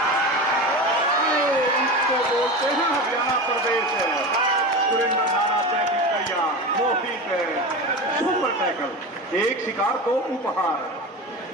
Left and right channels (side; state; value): both; normal; correlation 0.26